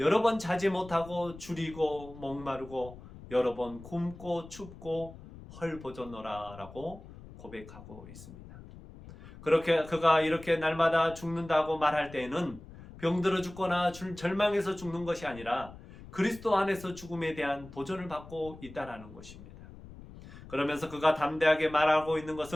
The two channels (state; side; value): noise; left; rumble, 17 dB below the sound